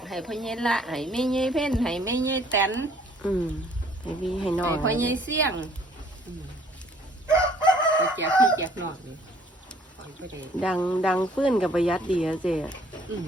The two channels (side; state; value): both; normal; correlation 0.59